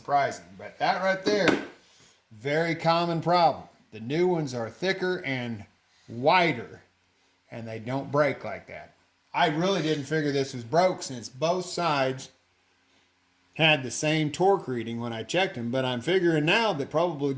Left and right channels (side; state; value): both; identical; correlation 1.00